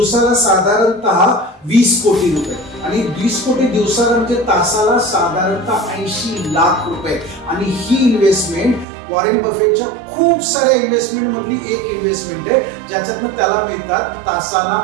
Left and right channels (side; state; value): left; drops out; at 8.8 s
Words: साधारणतः 20 कोटी रुपये आणि 20 कोटी दिवसाला म्हणजे तासाला साधारणतः 80 लाख रुपये. आणि ही इन्व्हेस्टमेंट वॉरेन बफेटच्या खूप साऱ्या इन्व्हेस्टमेंट मधली एक इन्व्हेस्टमेंट आहे ज्याच्यातून त्याला मिळतात तासाला